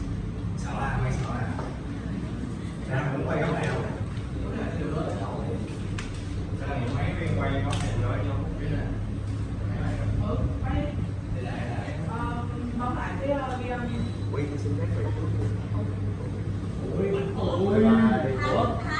Sợ à? Mày sợ à? Ra cũng quay góc nào? Cái này mấy viên quay góc này rồi nhau cũng biết nè. Quay. Bấm lại cái ghi âm. Quay tôi xin phép vậy. Ôi, ủa?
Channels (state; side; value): identical; both; correlation 1.00